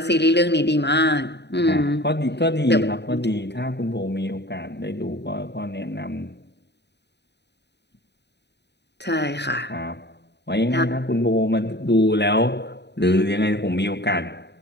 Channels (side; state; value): right; late; 0.50 ms